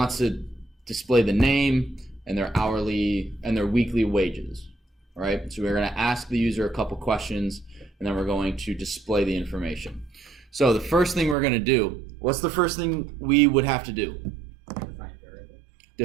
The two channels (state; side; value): drops out; left; at 11.4 s